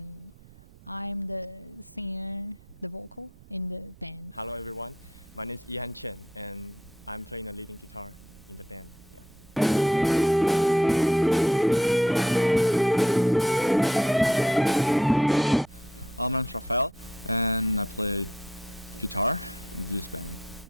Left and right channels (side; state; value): right; noise; rumble, 24 dB below the sound